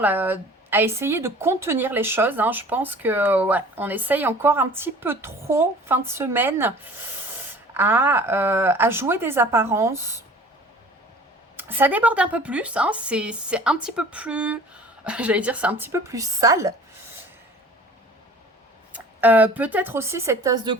à essayer de contenir les choses. Hein. Je pense que ouais, on essaye encore un petit peu trop, fin de semaine, à jouer des apparences. Ça déborde un peu plus, hein. C'est un petit peu plus... J'allais dire, c'est un petit peu plus sale. Peut-être aussi cette tasse de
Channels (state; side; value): normal; both; correlation 0.46